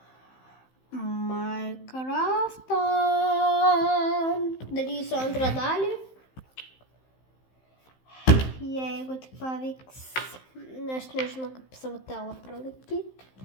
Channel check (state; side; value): late; right; 15 ms